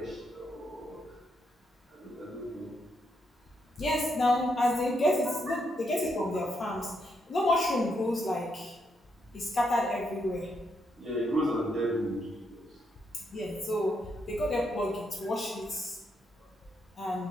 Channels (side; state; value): both; normal; correlation 0.79